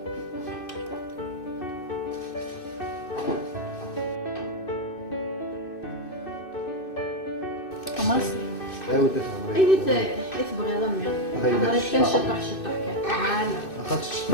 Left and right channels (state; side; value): late; right; 2.6 ms